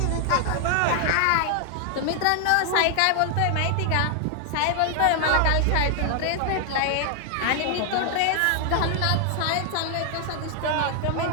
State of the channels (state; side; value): different; both; correlation 0.00